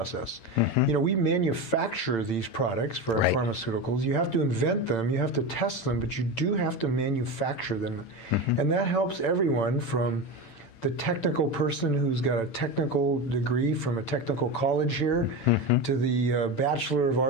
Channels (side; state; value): right; late; 8.9 ms